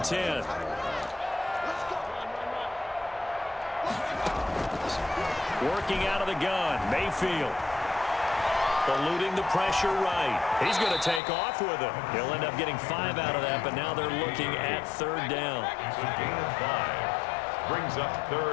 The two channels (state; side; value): drops out; right; at 11.2 s